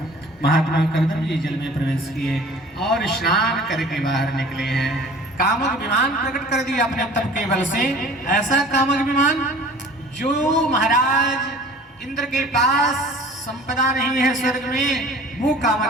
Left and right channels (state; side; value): normal; both; correlation 0.46